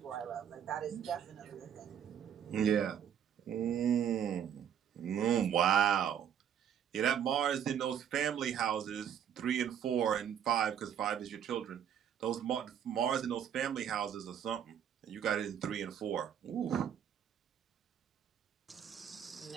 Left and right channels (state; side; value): quieter; left; 9.0 dB